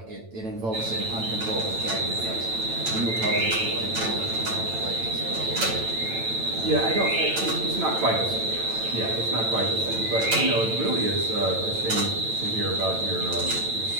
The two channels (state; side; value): late; left; 9.0 ms